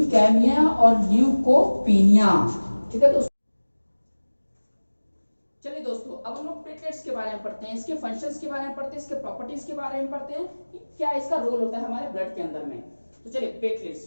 और ल्यूकोपीनिया। ठीक है दोस्तों। चलिए दोस्तों अब हम लोग प्लेटलेट्स के बारे में पढ़ते हैं, इसके फंक्शंस के बारे में पढ़ते हैं, इसके प्रॉपर्टीज के बारे में पढ़ते हैं कि क्या इसका रोल होता है हमारे ब्लड के अंदर में। तो चलिए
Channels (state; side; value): inverted; both; correlation -1.00